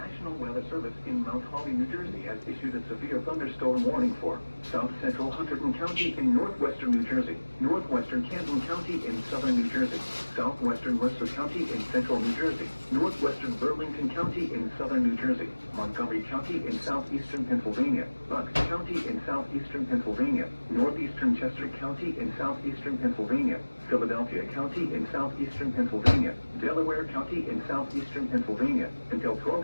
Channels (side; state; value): both; inverted; correlation -1.00